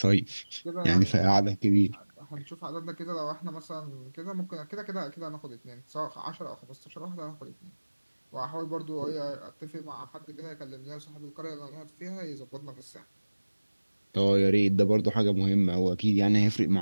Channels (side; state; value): both; inverted; correlation -1.00